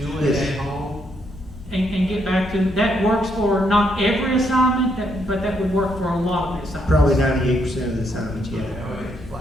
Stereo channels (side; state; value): both; normal; correlation 0.75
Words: it Yes. at home? And get back to, that works for not every assignment, but that would work for a lot of the assignments. Probably 98% of the assignments, yeah. I think